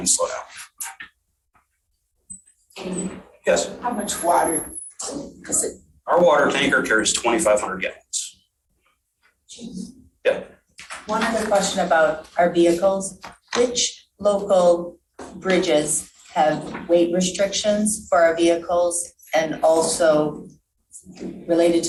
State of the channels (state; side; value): identical; both; correlation 1.00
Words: slow down. Yes? How much water? Our water tanker carries 2,500 gallons. Yeah. One other question about our vehicles. Which local bridges have weight restrictions for our vehicles? And also related